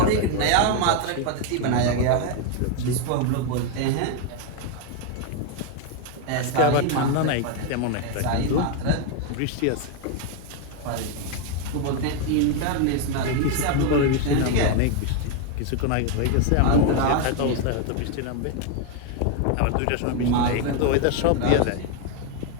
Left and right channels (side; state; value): both; different; correlation 0.01